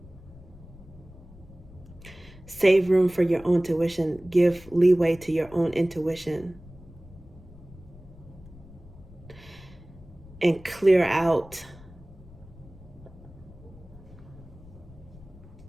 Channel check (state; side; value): noise; left; rumble, 20 dB below the sound